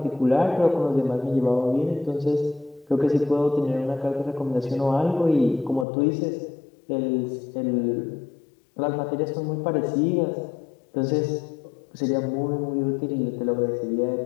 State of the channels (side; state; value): right; drops out; at 5.9 s